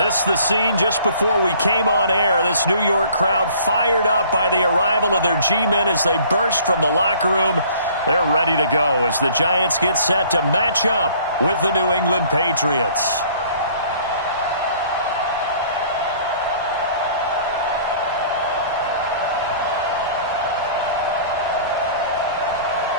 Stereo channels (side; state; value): both; inverted; correlation -0.53